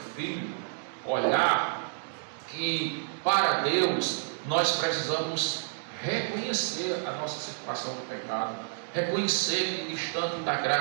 filho, olhar que para Deus nós precisamos reconhecer a nossa situação de pecado, reconhecer que distante da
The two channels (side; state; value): left; silent; digital silence